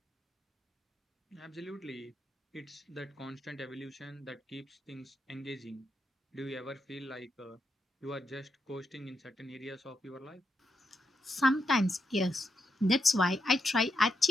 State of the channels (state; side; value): normal; both; correlation 0.81